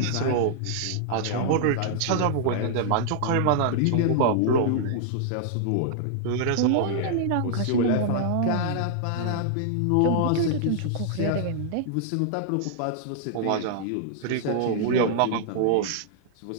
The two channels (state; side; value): different; both; correlation -0.01